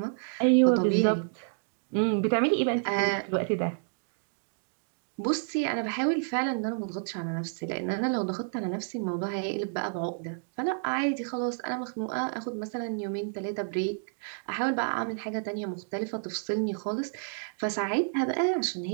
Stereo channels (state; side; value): silent; left; digital silence